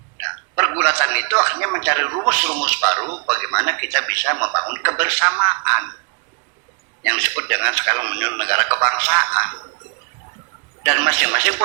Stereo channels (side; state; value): left; quieter; 34.7 dB